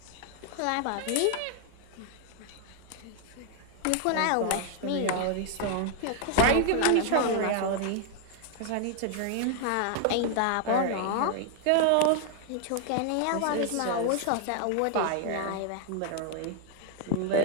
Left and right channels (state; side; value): different; both; correlation 0.00